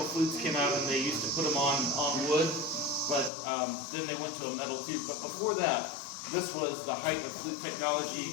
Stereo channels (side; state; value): right; drops out; at 3.3 s